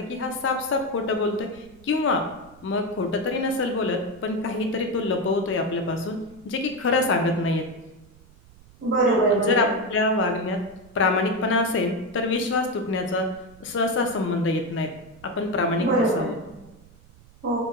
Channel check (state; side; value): noise; right; rumble, 24 dB below the sound